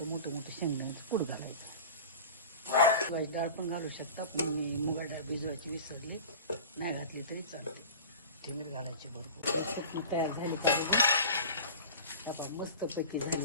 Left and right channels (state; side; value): inverted; both; correlation -0.36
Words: मोठं शेंगदाण्याचं कूट घालायचं. मुगाची डाळ पण घालू शकता, पण मी मुगाची डाळ भिजवायची विसरली, नाही घातली तरी चालते. ठेमीर घालायची भरपूर. तयार झाली पाहिजे. आपण मस्तपैकी